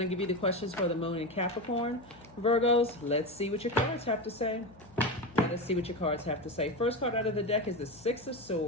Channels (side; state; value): left; noise; hum, 24 dB below the sound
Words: to give you the questions for the moon in Capricorn. Virgos, let's see what your cards have to say. Let's see what your cards have to say. First card out of the deck is the Six of